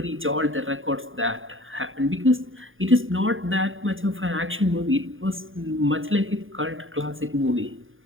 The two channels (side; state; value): left; late; 0.58 ms